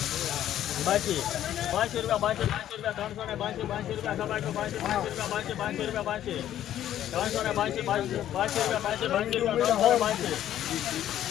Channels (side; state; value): right; quieter; 11.7 dB